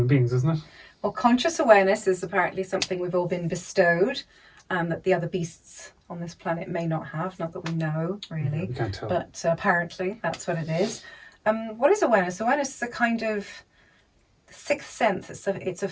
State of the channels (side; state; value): both; identical; correlation 1.00